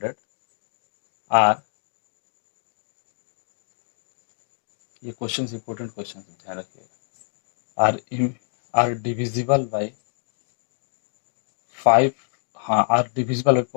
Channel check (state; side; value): silent; right; digital silence